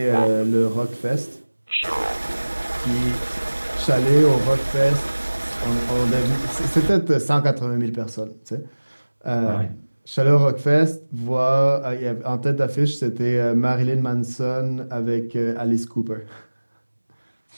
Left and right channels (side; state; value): both; inverted; correlation -1.00